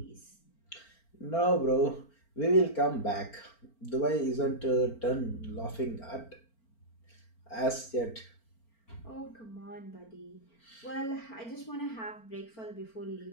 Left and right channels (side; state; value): right; late; 4.4 ms